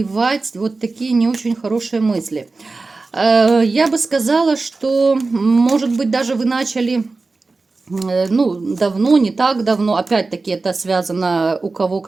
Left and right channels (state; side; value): quieter; left; 3.7 dB